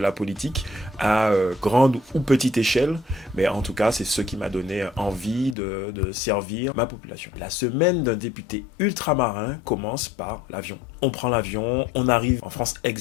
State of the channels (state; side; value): drops out; right; at 5.6 s